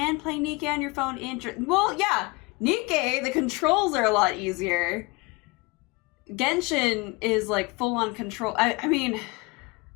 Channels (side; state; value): right; quieter; 25.9 dB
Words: play Nikkei on your phone. Well, yeah, Nikkei, the controls are a lot easier. Genshin is like full-on control. I mean,